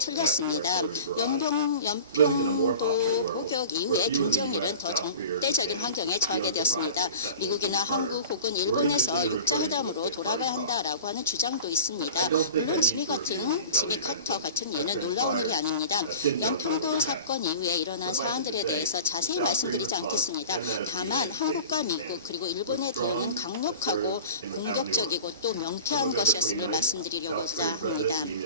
연평도 포격 이후에 김정일은 더 적대적인 환경에 처하게 되었습니다. 미국이나 한국 혹은 일본에서 육자회담으로 돌아가야 한다라고 하는 주장도 있습니다. 물론 지미 카터 같은 예는 놀라운 일이 아닙니다. 연평도 사건 이후에 일어난 사안들에 대해서 자세히 말씀드리지 않겠습니다. 다만 한국과 미국 그리고 일본의 대응은 강력하고 공격적이고 또 명쾌한 것이었음을 말씀드리려고자 합니다.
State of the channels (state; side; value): inverted; both; correlation -0.38